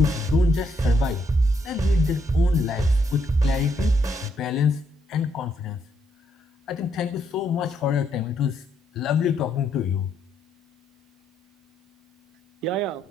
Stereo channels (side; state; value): both; normal; correlation 0.75